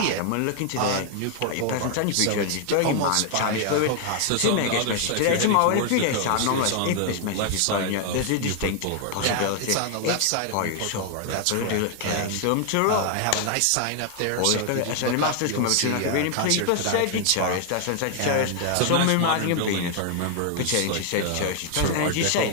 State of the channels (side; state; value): both; different; correlation 0.00